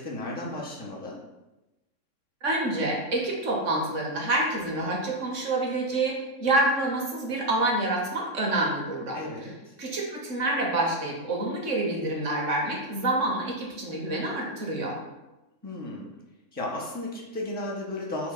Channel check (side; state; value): left; late; 3.6 ms